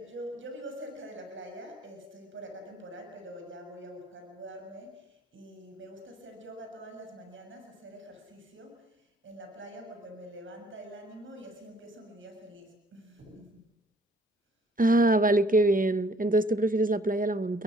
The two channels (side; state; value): both; normal; correlation 0.60